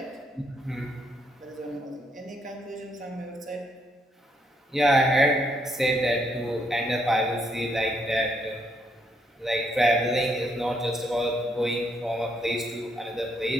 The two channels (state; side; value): normal; both; correlation 0.74